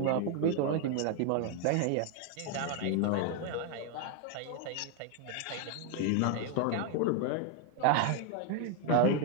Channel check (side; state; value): both; different; correlation 0.01